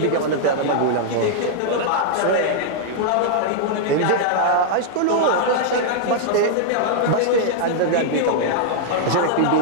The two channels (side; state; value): both; different; correlation -0.01